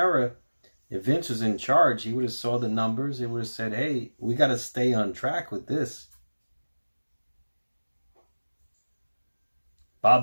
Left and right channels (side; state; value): both; inverted; correlation -1.00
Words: If Vince was in charge, he would have saw the numbers. He would have said, hey, we got to stay on track with this.